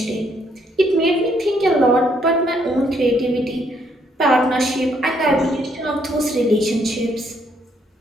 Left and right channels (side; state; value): both; normal; correlation 0.70